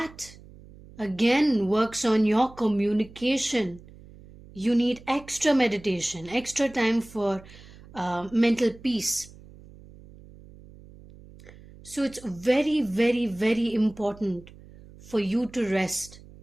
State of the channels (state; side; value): noise; right; hum, 21 dB below the sound